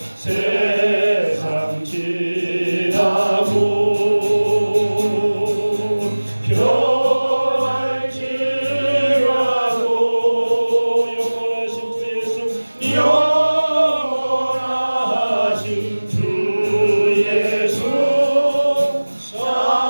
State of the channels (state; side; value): inverted; both; correlation -1.00